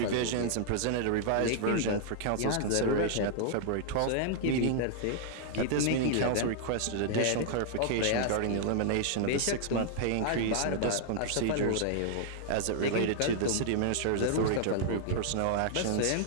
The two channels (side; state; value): both; different; correlation -0.01